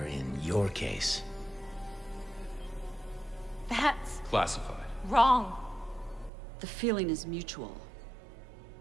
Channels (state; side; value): drops out; left; at 6.3 s